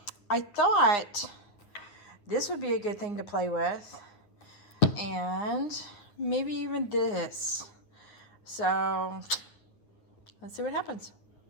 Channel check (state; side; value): late; right; 9.4 ms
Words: I thought this would be a good thing to play with. And maybe even this. So let's see what happens.